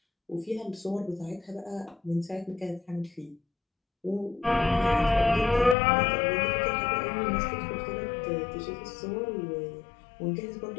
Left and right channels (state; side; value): drops out; right; at 5.8 s